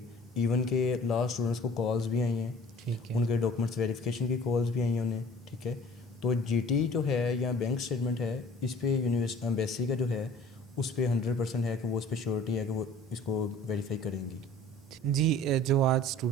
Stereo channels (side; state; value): both; normal; correlation 0.49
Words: इवन के लास्ट स्टूडेंट्स को कॉल्स भी आई हैं, ठीक है, उनके डॉक्यूमेंट्स वेरिफिकेशन की कॉल्स भी आई हैं उन्हें, ठीक है। तो जीटी जो है या बैंक स्टेटमेंट है, इस पे यूनिवर्सिटी एम्बेसी का जो है उस पर 100% है कि वो उस पर श्योरिटी है कि वो इसको वेरीफाई करेंगी। जी, जो आज